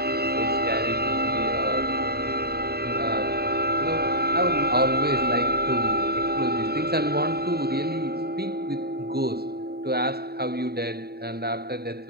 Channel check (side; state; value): left; late; 0.46 ms